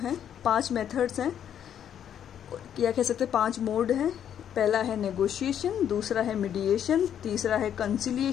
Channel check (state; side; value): quieter; right; 9.5 dB